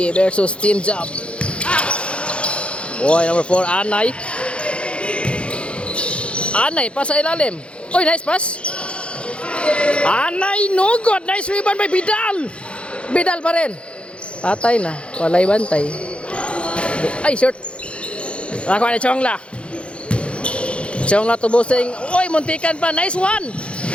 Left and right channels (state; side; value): late; right; 0.059 ms